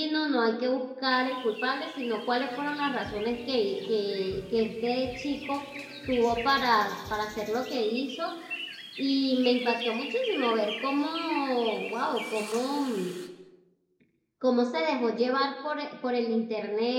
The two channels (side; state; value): both; identical; correlation 1.00